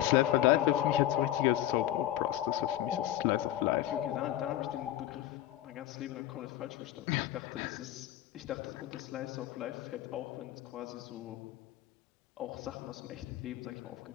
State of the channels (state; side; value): quieter; right; 13.1 dB